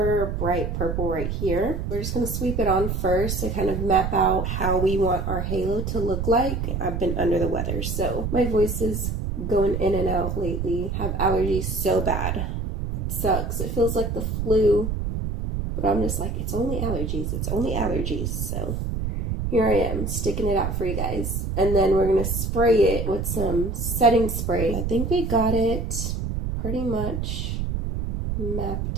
bright purple right here. We're just going to sweep it on first to kind of map out how we want our halo to look like. I've been under the weather, so my voice is going in and out lately. I have allergies so bad. It sucks. It feels like the flu. But I'm just like, it's only allergies. It's only allergies. So here I am, sticking it out for you guys. And then we're going to spray it with some setting spray. I think we got it pretty much mapped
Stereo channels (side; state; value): right; noise; rumble, 2 dB below the sound